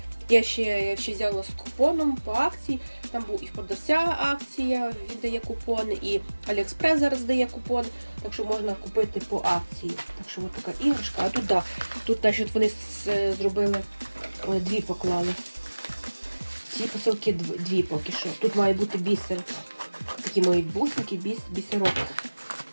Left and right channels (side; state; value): both; inverted; correlation -1.00